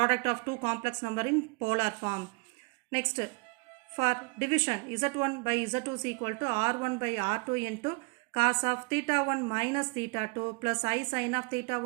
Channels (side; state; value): left; quieter; 30.1 dB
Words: of two complex number in polar form. Next, for division, z1 by z2 is equal to r1 by r2 into cos of theta 1 minus theta 2 plus I sin of theta